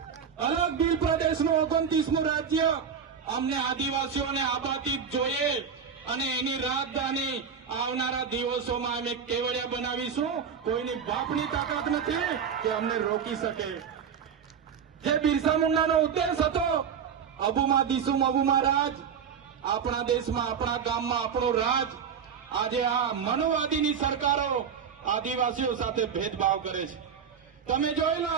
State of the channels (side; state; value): left; quieter; 7.1 dB